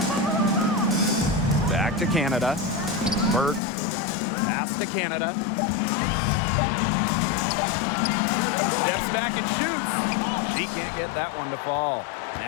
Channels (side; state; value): right; drops out; at 3.6 s